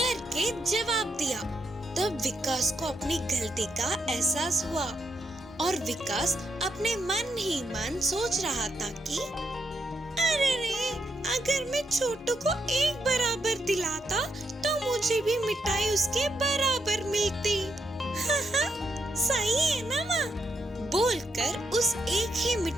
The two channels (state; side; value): normal; both; correlation 0.80